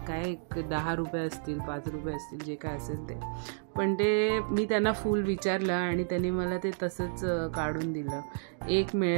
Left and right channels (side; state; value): left; silent; digital silence